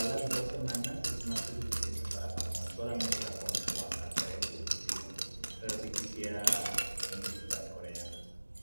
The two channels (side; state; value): both; inverted; correlation -1.00